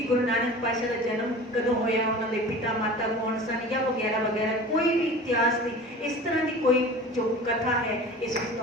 गुरु नानक पातशाह का जन्म कदों होया, उन्होंने पिता माता कौन सन या वगैरह वगैरह, कोई भी इतिहास की इस तरह की कोई जो कथा है इस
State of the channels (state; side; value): normal; both; correlation 0.38